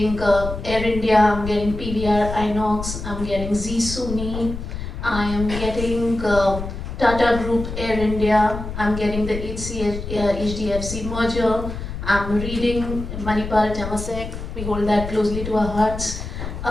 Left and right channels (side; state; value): left; noise; rumble, 7 dB below the sound